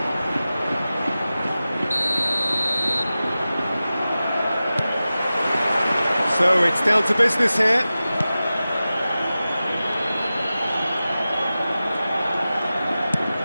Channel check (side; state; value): both; inverted; correlation -0.95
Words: So it's down to business here.